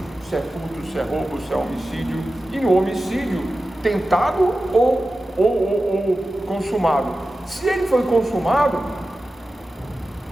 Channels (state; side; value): normal; both; correlation 0.94